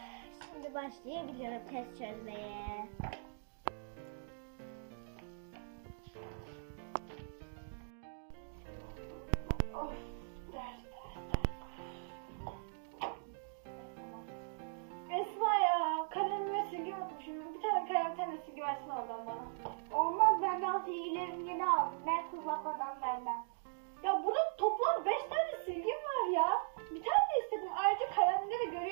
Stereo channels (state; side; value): silent; left; digital silence